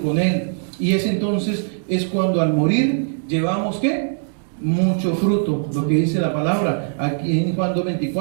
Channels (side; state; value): left; silent; digital silence